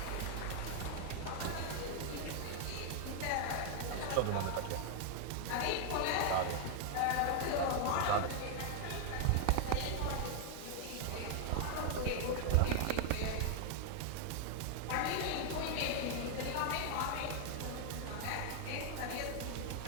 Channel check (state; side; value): different; both; correlation 0.00